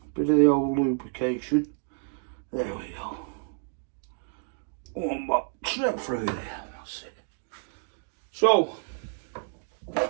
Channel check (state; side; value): silent; left; digital silence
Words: bit of the old lubrication. There we go. One back, straight through there. That's it. So,